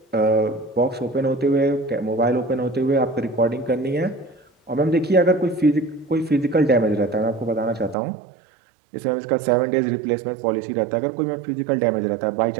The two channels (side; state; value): left; drops out; at 8.0 s